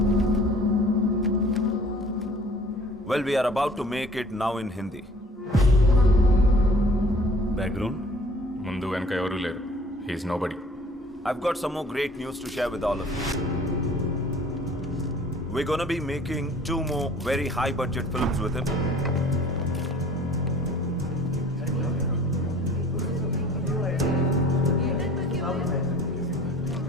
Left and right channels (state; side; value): normal; both; correlation 0.50